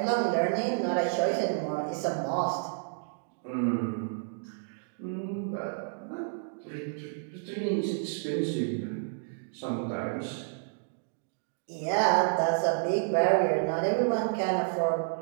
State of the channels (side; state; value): left; silent; digital silence